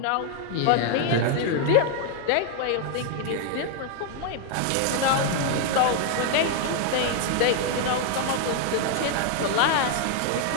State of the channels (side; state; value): both; different; correlation 0.00